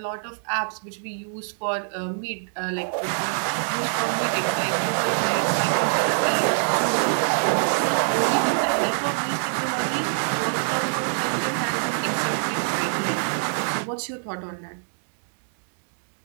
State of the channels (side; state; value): left; silent; 62 dB below the other